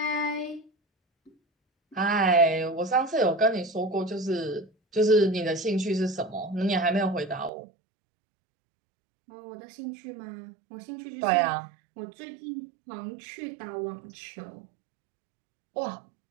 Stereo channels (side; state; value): left; drops out; at 7.5 s